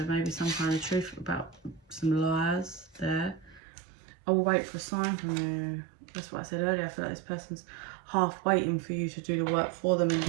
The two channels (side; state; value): left; drops out; at 3.6 s